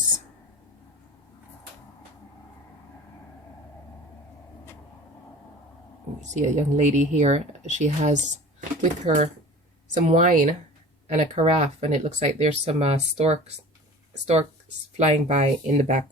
You see a young lady here. She has with her some wine and a carafe, and it looks like there's some storks flying by in the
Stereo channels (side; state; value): both; normal; correlation 0.41